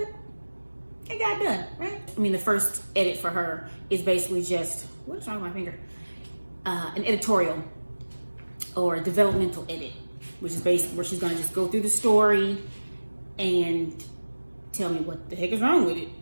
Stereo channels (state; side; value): inverted; both; correlation -1.00